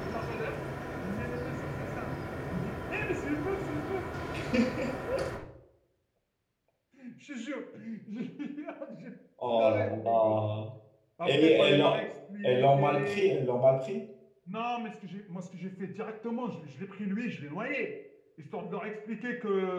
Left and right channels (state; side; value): identical; both; correlation 1.00